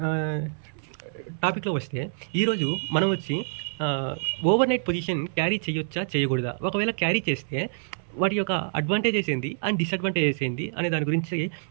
టాపిక్‌లో వస్తే, ఈరోజు మనం వచ్చి ఓవర్ నైట్ పొజిషన్ క్యారీ చేయొచ్చా? చేయకూడదా? ఒకవేళ క్యారీ చేస్తే వాటి యొక్క అడ్వాంటేజెస్ ఏంది అండ్ డిసడ్వాంటేజెస్ ఏంది అనే దాని గురించి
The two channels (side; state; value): left; silent; 60 dB below the other